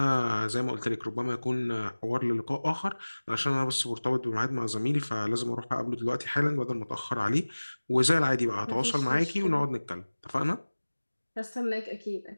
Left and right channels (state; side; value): inverted; both; correlation -1.00